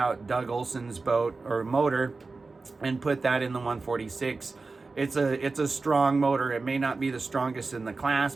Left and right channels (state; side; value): quieter; left; 3.9 dB